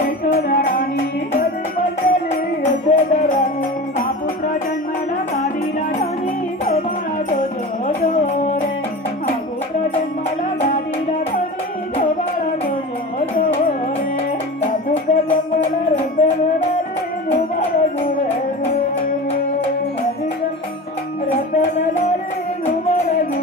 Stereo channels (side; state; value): both; normal; correlation 0.31